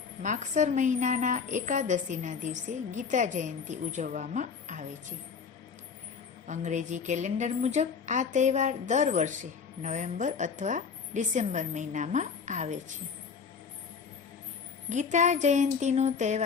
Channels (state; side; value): quieter; right; 5.9 dB